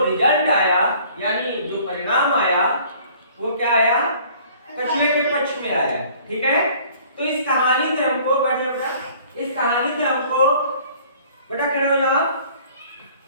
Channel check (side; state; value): both; inverted; correlation -0.54